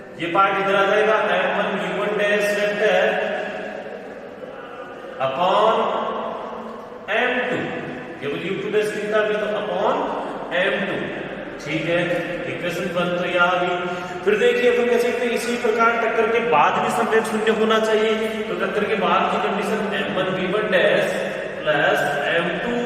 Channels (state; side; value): identical; both; correlation 1.00